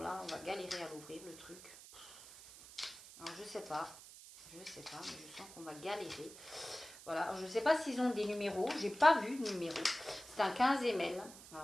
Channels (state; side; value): noise; right; hiss, 16 dB below the sound